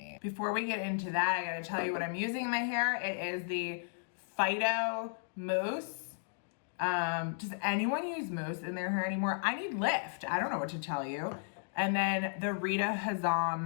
Before we get into that, I gotta tell you what I'm using in my hair. It is the Phyto Mousse. Does anyone use mousse in their hair anymore? I need lift. I don't know what to tell you. And then the Rita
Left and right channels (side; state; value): right; silent; digital silence